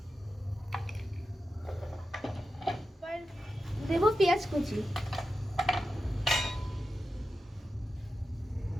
এবার দেবো পেঁয়াজ কুচি,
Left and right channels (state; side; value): normal; both; correlation 0.91